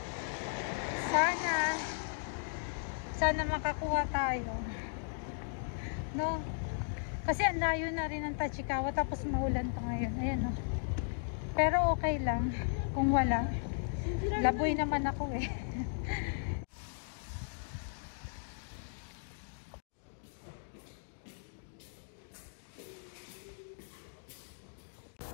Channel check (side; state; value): right; silent; digital silence